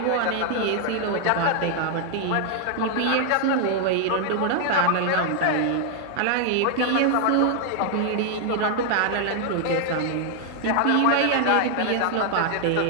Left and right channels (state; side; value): different; both; correlation 0.00